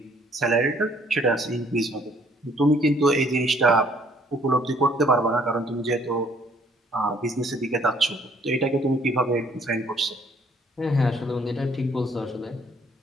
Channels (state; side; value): normal; both; correlation 0.62